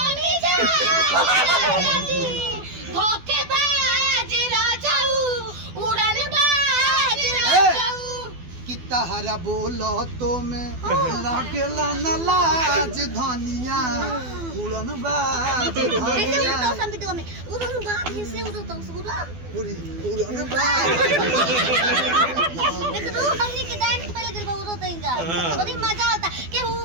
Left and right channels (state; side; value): late; left; 12 ms